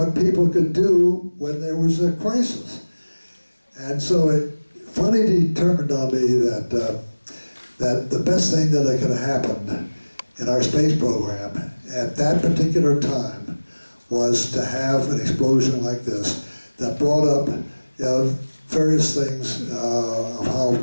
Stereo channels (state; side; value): inverted; both; correlation -1.00